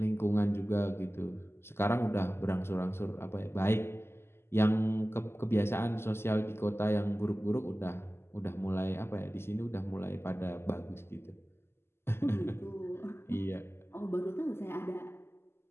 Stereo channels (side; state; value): right; late; 0.12 ms